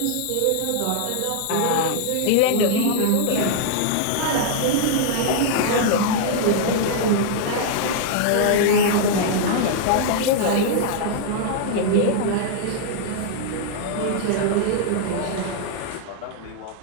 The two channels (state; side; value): different; both; correlation -0.01